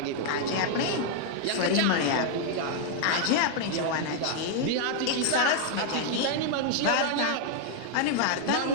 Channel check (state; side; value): different; both; correlation 0.00